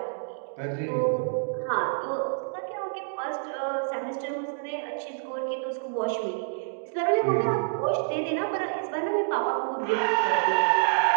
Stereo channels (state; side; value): silent; left; digital silence